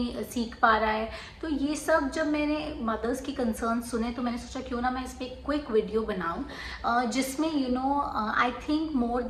सीख पा रहा है। तो ये सब जब मैंने मदर्स की कंसर्न सुने तो मैंने सोचा क्यों ना मैं इस पर एक क्विक वीडियो बनाऊँ जिसमें I think more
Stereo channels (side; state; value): both; identical; correlation 1.00